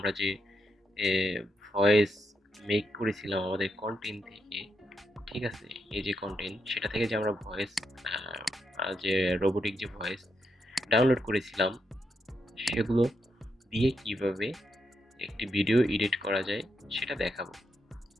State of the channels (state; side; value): normal; both; correlation 0.82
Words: যে ভয়েস মেক করেছিলাম আমাদের কন্টেন্ট থেকে, ঠিক আছে? এই যে কন্টেন্ট সেটা থেকে যে আমরা ভয়েস যে রোবোটিক যে ভয়েস ডাউনলোড করেছিলাম সেগুলো দিয়ে কিভাবে একটি ভিডিও এডিট করা যায় সেটা দেখাবো।